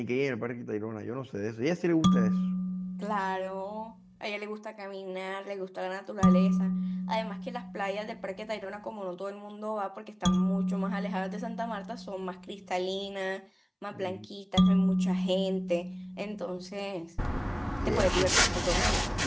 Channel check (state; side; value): identical; both; correlation 1.00